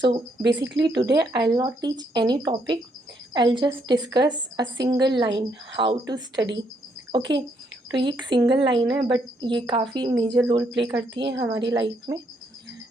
basically today I'll not teach any topic. I'll just discuss a single line how to study. Okay, तो ये एक single line है but ये काफ़ी major role play करती है हमारी life में।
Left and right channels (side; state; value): both; normal; correlation 0.73